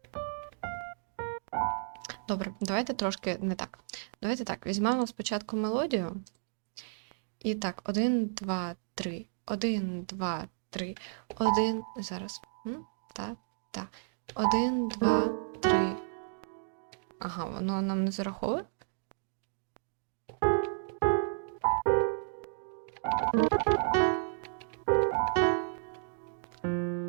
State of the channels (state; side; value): silent; left; digital silence